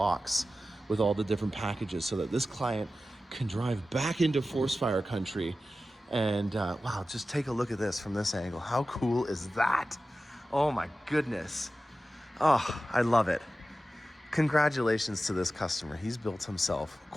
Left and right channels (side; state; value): both; normal; correlation 0.94